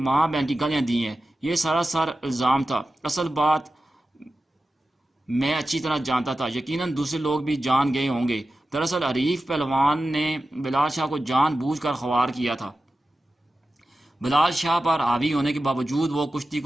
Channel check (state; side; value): normal; both; correlation 0.93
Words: بہن کی گالیاں دی ہیں، یہ سراسر الزام تھا، اصل بات میں اچھی طرح جانتا تھا، یقیناً دوسرے لوگ بھی جان گئے ہوں گے، دراصل حریف پہلوان نے بلال شاہ کو جان بوجھ کر خوار کیا تھا۔ بلال شاہ پر حاوی ہونے کے باوجود وہ کشتی